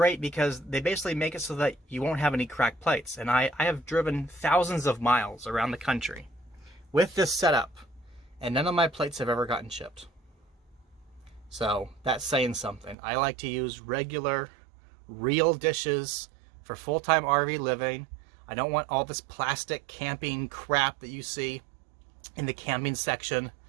because they basically make it so that you won't have any cracked plates. And I have driven thousands of miles around the country with this setup, and none of my plates have ever gotten chipped. So that's saying something. I like to use regular, real dishes for full-time RV living. I don't want all this plastic camping crap that you see in the camping section,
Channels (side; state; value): left; drops out; at 13.0 s